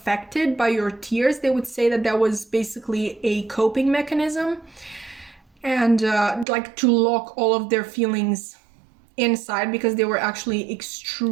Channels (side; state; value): left; drops out; at 6.5 s